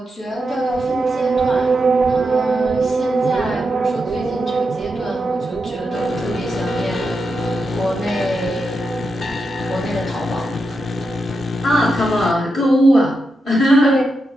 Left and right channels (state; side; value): normal; both; correlation 0.86